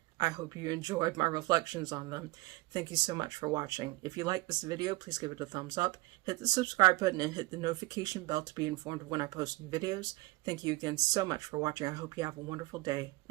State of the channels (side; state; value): left; quieter; 21.5 dB